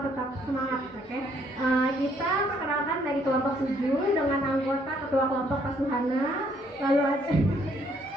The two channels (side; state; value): both; normal; correlation 0.67